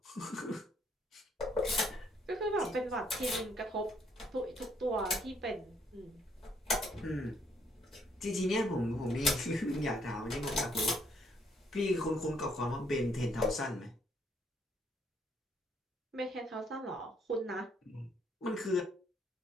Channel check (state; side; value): normal; both; correlation 0.68